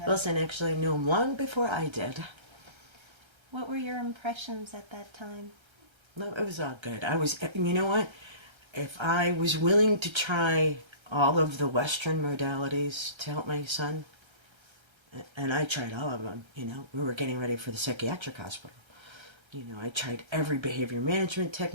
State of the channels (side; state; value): left; late; 1.3 ms